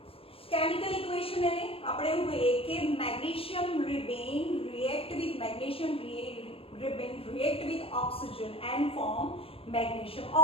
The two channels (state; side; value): late; right; 0.27 ms